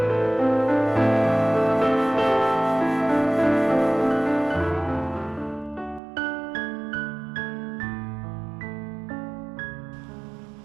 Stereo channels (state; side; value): drops out; left; at 6.0 s